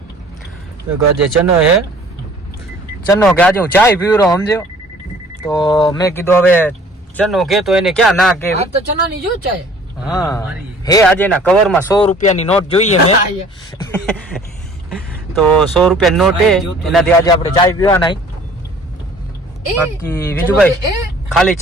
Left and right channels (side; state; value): both; normal; correlation 0.52